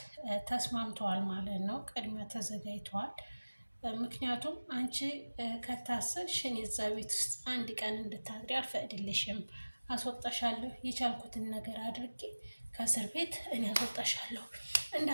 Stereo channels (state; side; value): inverted; both; correlation -1.00